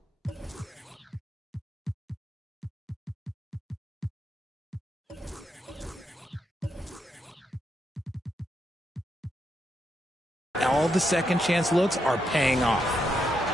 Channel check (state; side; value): normal; both; correlation 0.81